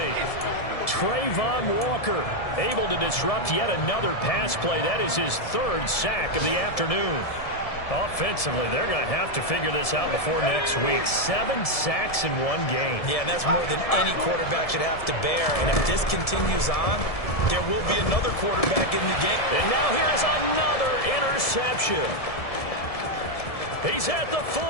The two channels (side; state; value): right; late; 1.7 ms